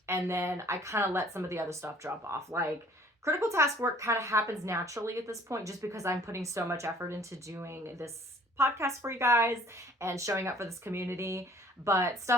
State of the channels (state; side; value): normal; both; correlation 0.55